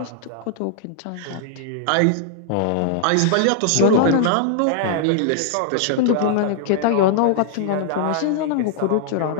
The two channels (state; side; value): different; both; correlation -0.01